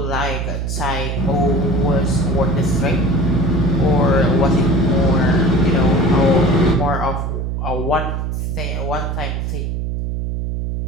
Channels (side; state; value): right; noise; hum, 2 dB below the sound